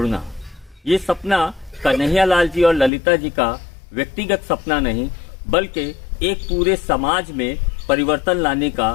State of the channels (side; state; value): right; drops out; at 2.9 s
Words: ये सपना कन्हैयालाल जी और ललिता जी का व्यक्तिगत सपना नहीं, बल्कि एक पूरे समाज में परिवर्तन लाने